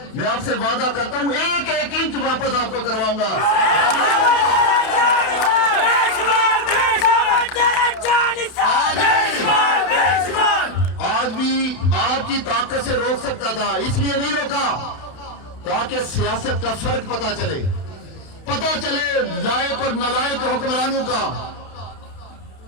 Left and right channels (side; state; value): right; late; 31 ms